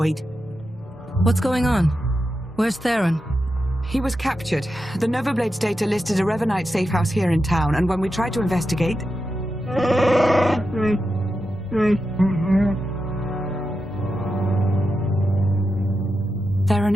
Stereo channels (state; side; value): normal; both; correlation 0.89